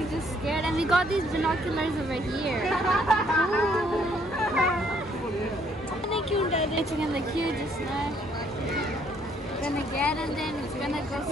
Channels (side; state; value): both; normal; correlation 0.66